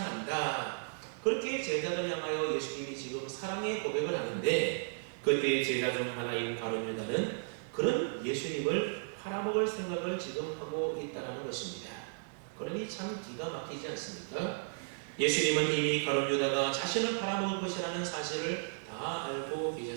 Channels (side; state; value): left; silent; digital silence